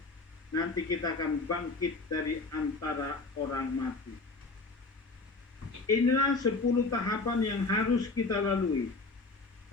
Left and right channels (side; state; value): right; quieter; 3.6 dB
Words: nanti kita akan bangkit dari antara orang mati. Inilah 10 tahapan yang harus kita lalui.